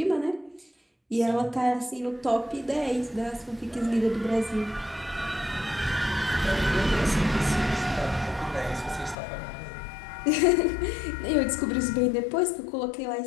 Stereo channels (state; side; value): drops out; right; at 9.2 s